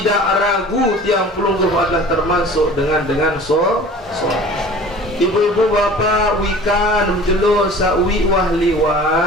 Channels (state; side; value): normal; both; correlation 0.43